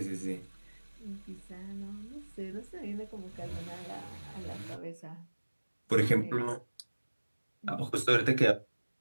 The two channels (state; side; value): inverted; both; correlation -1.00